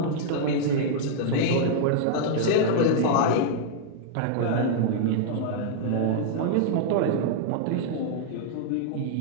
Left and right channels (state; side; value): different; both; correlation -0.01